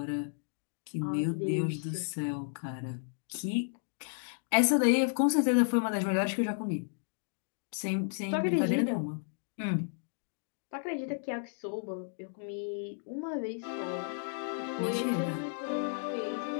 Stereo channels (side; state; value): right; silent; digital silence